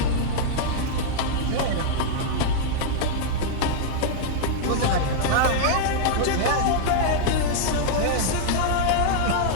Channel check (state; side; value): different; both; correlation -0.01